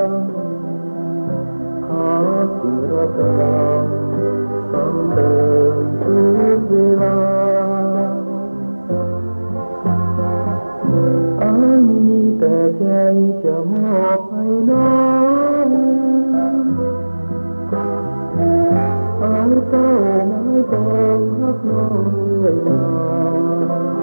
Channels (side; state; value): both; inverted; correlation -1.00